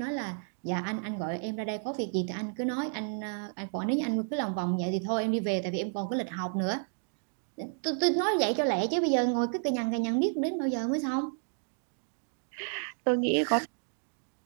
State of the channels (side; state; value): left; silent; 57 dB below the other